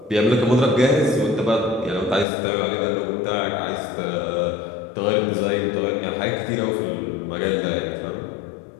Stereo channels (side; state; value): right; drops out; at 2.2 s